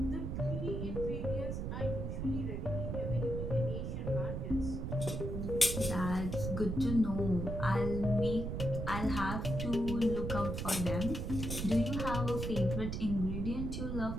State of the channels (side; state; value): right; noise; rumble, 3 dB below the sound